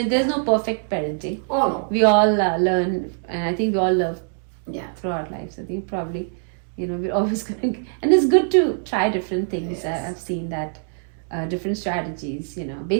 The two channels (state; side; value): silent; left; digital silence